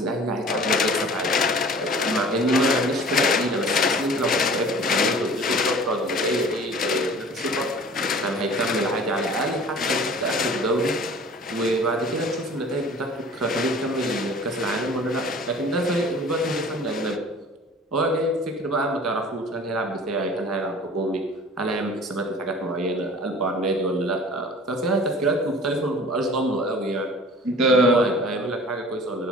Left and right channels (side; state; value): both; normal; correlation 0.45